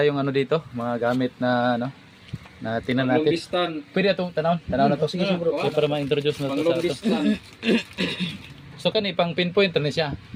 dito, mga gamit na na tinan natin. Pwede itong tanaw na to. Sige bro. So, para ma-introduce na to sa ato. So kani pang pinpoint na siya.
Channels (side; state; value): both; identical; correlation 1.00